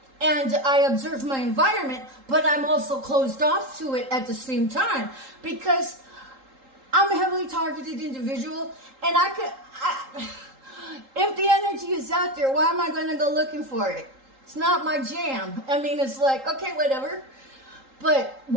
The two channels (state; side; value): late; left; 3.8 ms